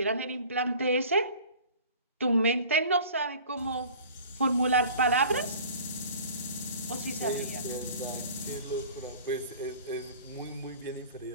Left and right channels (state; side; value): inverted; both; correlation -0.45